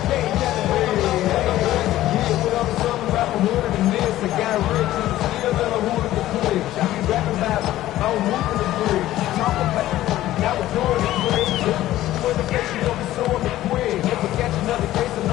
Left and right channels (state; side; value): quieter; right; 14.6 dB